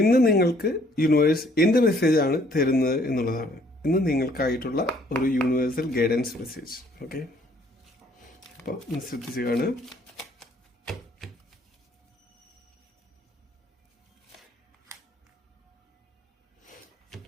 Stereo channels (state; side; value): normal; both; correlation 0.62